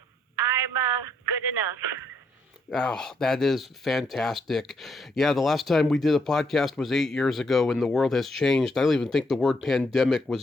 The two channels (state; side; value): normal; both; correlation 0.74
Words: good enough. Oh, that is fantastic. Yeah, the last time we did a podcast was 8 years ago, and the world has changed. I don't even think the word pandemic